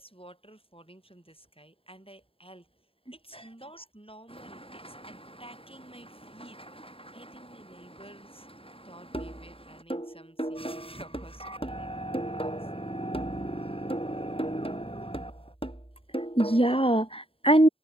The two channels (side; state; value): right; late; 0.27 ms